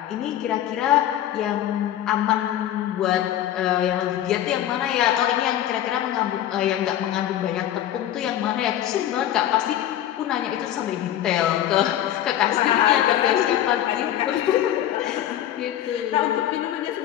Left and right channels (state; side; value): quieter; right; 11.8 dB